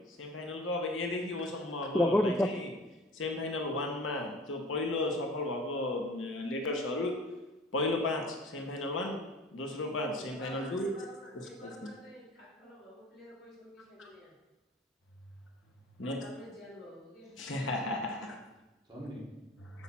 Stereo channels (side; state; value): both; normal; correlation 0.43